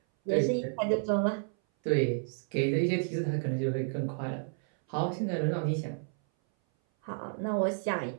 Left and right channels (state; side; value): silent; left; 57 dB below the other